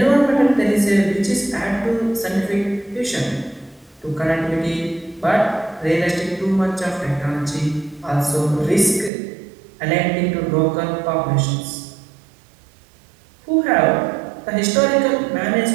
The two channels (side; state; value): left; drops out; at 9.1 s